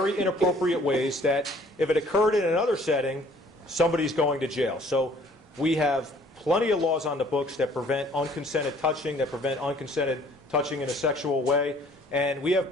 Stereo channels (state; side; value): normal; both; correlation 0.57